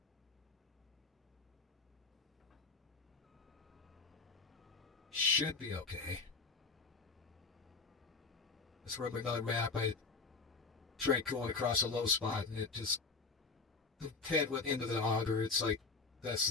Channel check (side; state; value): right; quieter; 4.4 dB